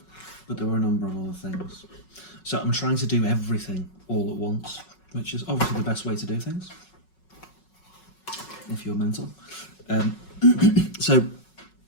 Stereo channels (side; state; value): right; late; 5.4 ms